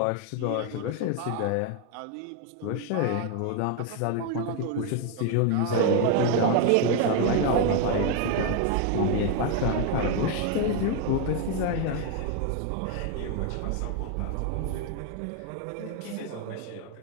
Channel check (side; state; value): both; different; correlation 0.01